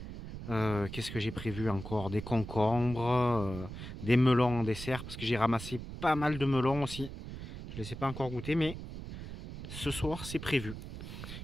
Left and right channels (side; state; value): right; noise; rumble, 10 dB below the sound